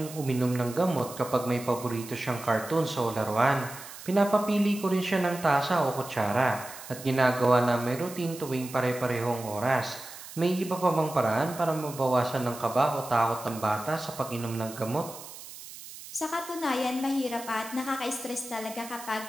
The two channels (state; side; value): noise; right; hiss, 14 dB below the sound